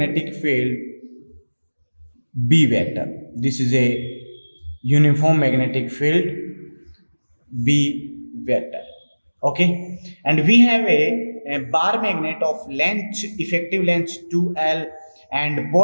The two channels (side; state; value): both; inverted; correlation -1.00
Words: field B vector. This is a uniform magnetic field B vector. Okay. And we have a bar magnet of length, effective length 2L, and